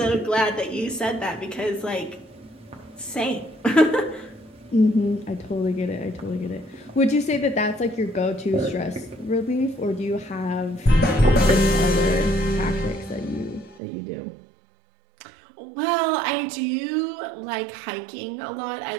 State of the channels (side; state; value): left; drops out; at 13.8 s